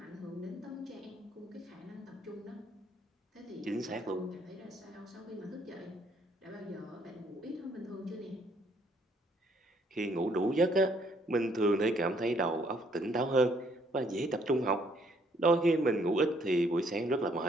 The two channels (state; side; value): normal; both; correlation 0.67